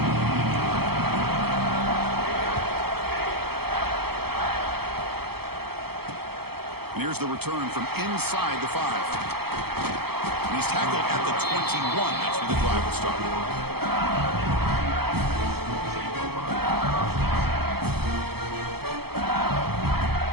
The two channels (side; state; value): left; late; 0.96 ms